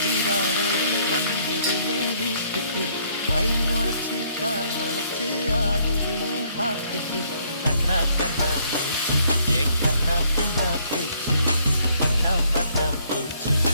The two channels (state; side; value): inverted; both; correlation -0.66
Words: தீபாவளி வந்தது என் வீட்டுக்கு கை முளைச்சு கால் முளைச்சு ஆடுது என் பாட்டுக்கு கண்ணா கண்ணா மூச்சு என் கண்ணா பின்னா பேச்சு பட்டம் பட்டம் பூச்சு